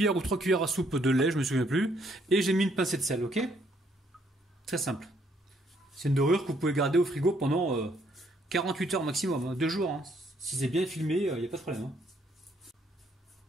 ou 3 cuillères à soupe de lait, je me souviens plus, et j'ai mis une pincée de sel, ok? Très simple. C'est une dorure que vous pouvez garder au frigo pendant 48 heures maximum, hein, 2 jours. Hein. Si c'est bien filmé, il n'y a pas de problème.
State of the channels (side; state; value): both; normal; correlation 0.69